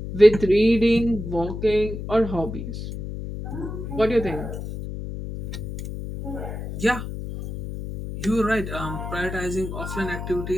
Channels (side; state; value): left; noise; hum, 7 dB below the sound